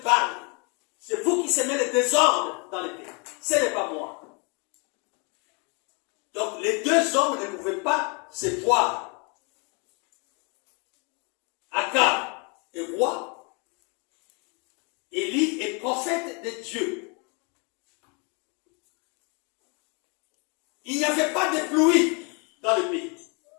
Baal. C'est vous qui semez le désordre dans le pays. Ce n'est pas moi. Donc les deux hommes ne pouvaient pas se voir. Akab est roi. Élie est prophète de Dieu. Il n'y avait pas de pluie dans le pays.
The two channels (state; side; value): quieter; right; 33.6 dB